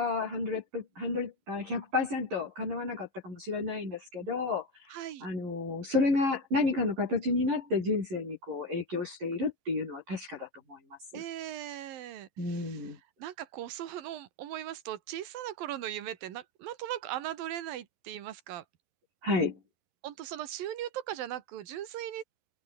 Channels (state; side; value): late; left; 11 ms